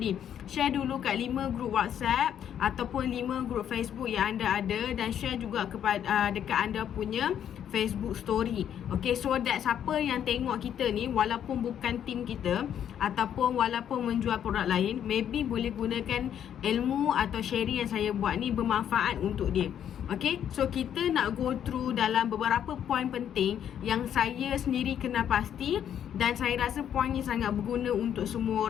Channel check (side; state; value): right; quieter; 9.5 dB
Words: Share dulu kat 5 group WhatsApp ataupun 5 group Facebook yang anda ada, dan share juga kepada dekat anda punya Facebook story. Okay, so that siapa yang tengok kita ni, walaupun bukan tim kita ataupun walaupun menjual produk lain, maybe boleh gunakan ilmu atau sharing yang saya buat ni bermanfaat untuk dia. Okay, so kita nak go through dalam beberapa poin penting yang saya sendiri kenal pasti, dan saya rasa poin ni sangat berguna untuk semua